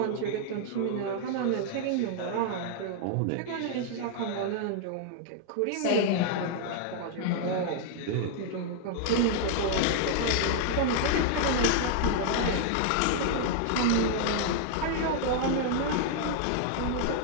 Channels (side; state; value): both; different; correlation 0.00